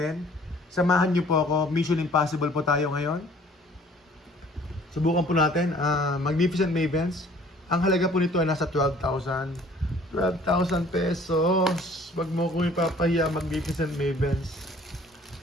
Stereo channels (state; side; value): normal; both; correlation 0.54